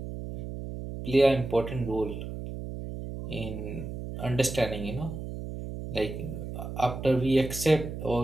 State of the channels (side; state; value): right; noise; hum, 8 dB below the sound